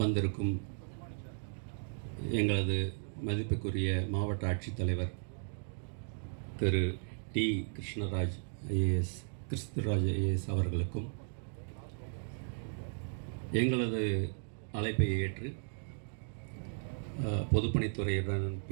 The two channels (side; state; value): left; silent; digital silence